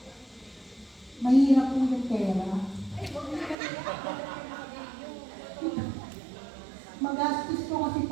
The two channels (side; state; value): left; drops out; at 3.6 s